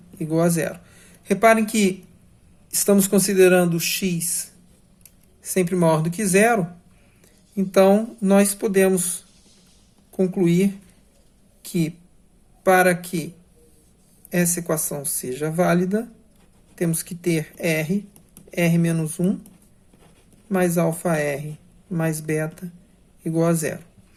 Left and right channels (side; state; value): both; identical; correlation 1.00